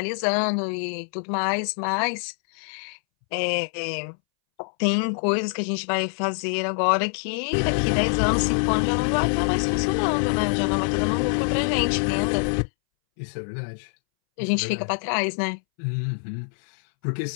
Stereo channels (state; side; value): silent; right; 62 dB below the other